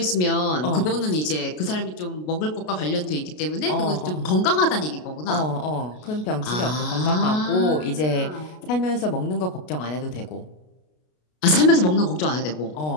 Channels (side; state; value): right; late; 33 ms